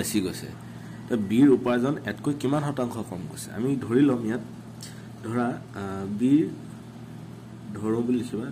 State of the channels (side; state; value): both; identical; correlation 1.00